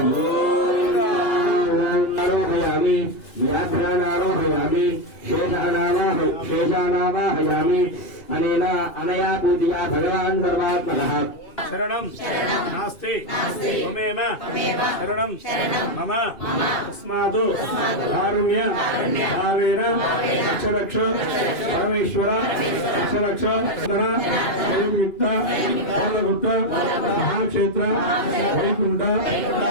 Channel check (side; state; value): right; late; 2.4 ms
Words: गोविन्दा आरोहयामि व्याघ्रानारोहयामि शेषानावाहयामि अनया पूजया भगवान् सर्वात्मनः शरणं नास्ति त्वमेव शरणं मम तस्मात् कारुण्य भावेन रक्ष परमेश्वर रक्ष संयुक्त पालपुत्र महाक्षेत्र वैकुंठ